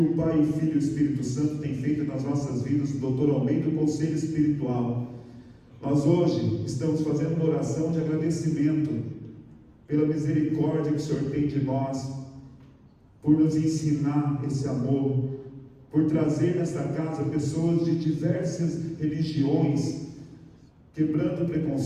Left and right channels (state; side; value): identical; both; correlation 1.00